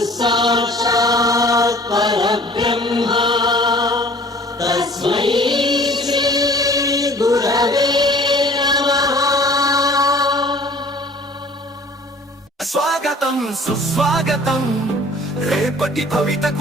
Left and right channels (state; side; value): normal; both; correlation 0.50